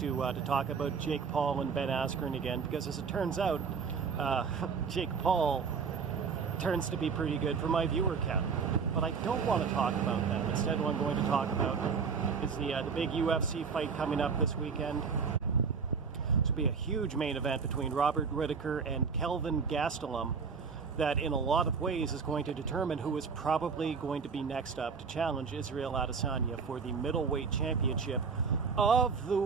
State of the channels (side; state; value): left; quieter; 5.6 dB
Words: talk about Jake Paul and Ben Askren again, because as it turns out, Jake Paul turns to be pretty good for my viewer count. But I don't want to talk about that. Instead, what I'm going to talk about is the big UFC fight coming up this weekend. This will be a huge main event between Robert Whittaker and Kelvin Gastelum that in a lot of ways is going to determine who is probably going to be next up to challenge Israel Adesanya for the Middleweight Championship of the